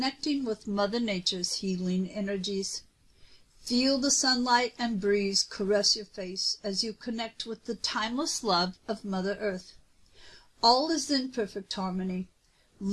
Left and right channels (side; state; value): both; identical; correlation 1.00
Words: with Mother Nature's healing energies. Feel the sunlight and breeze caress your face as you connect with the timeless love of Mother Earth. All is in perfect harmony.